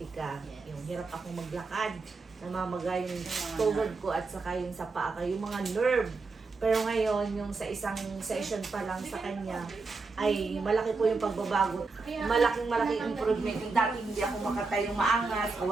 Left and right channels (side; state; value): left; quieter; 4.1 dB